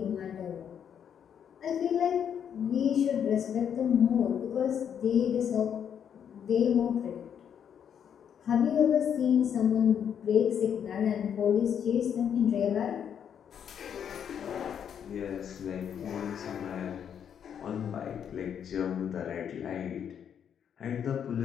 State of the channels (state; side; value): quieter; right; 8.4 dB